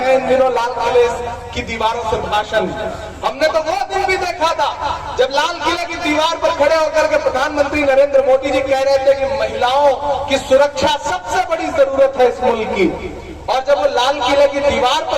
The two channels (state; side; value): identical; both; correlation 1.00